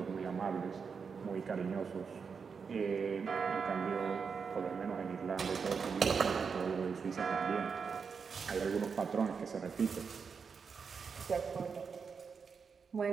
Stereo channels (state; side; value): quieter; left; 5.8 dB